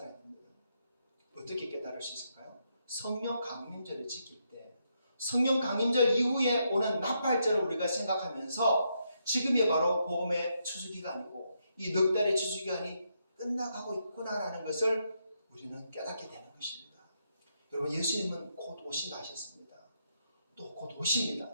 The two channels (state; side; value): inverted; both; correlation -0.79